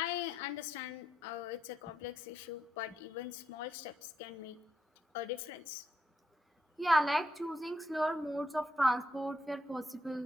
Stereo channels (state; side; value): normal; both; correlation 0.79